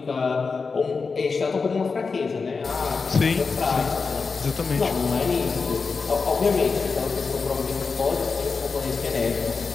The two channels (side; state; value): right; quieter; 4.8 dB